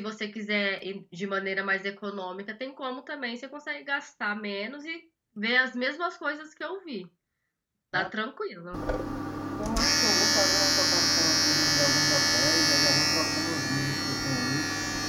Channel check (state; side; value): identical; both; correlation 1.00